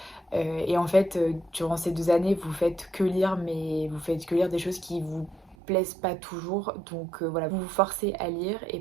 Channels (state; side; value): drops out; left; at 5.6 s